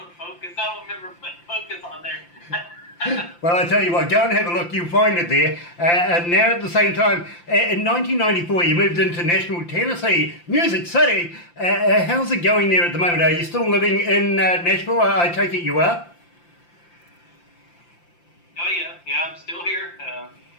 focus. I don't remember putting focus on there. Well, I tell you what, go and have a look. You'll find it there. And now at the same time, in 1994, you moved into Nashville, Tennessee, Music City. How's it going there at the moment? Are you still living in Nashville? I take it you are? Oh yeah, I'm still here.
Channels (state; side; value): late; right; 5.8 ms